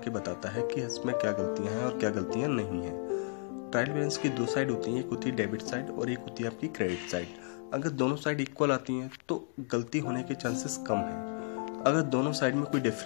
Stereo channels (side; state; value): right; silent; 56 dB below the other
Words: बताता है कि इसमें क्या गलतियां हैं और क्या गलतियां नहीं हैं। ट्रायल बैलेंस की 2 साइड होती हैं, एक होती है डेबिट साइड और एक होती है आपकी क्रेडिट साइड। अगर दोनों साइड इक्वल आती हैं तो गलती होने के चांसेस कम हैं। अगर दोनों साइड में कोई